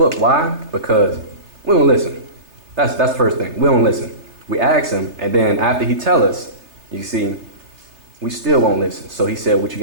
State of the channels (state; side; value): late; left; 3.3 ms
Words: Why? Because we don't listen. That's the first thing. We don't listen. We ask him, and then after he tell us, you see, we still won't listen. So he said what you